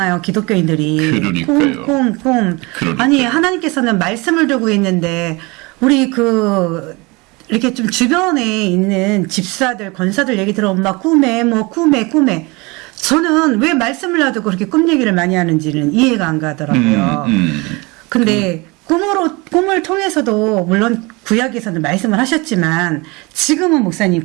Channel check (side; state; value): left; quieter; 25.7 dB